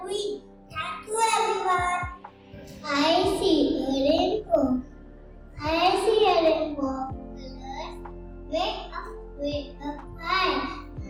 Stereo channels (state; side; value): identical; both; correlation 1.00